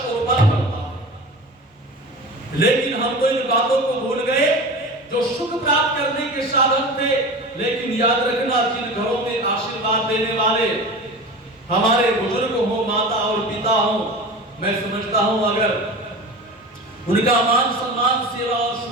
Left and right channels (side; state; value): both; normal; correlation 0.33